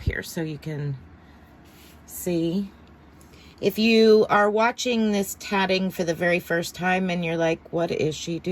so you can see. If you are watching this tatting for the very first time and you're like, what is she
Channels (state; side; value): identical; both; correlation 1.00